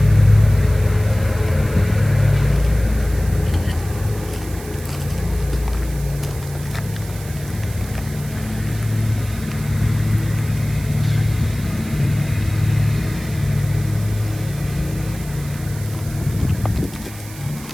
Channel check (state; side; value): noise; right; hiss, 17 dB below the sound